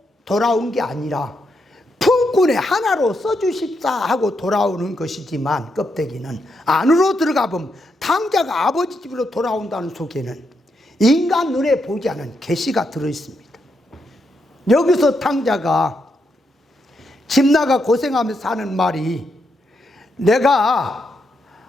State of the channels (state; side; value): normal; both; correlation 0.81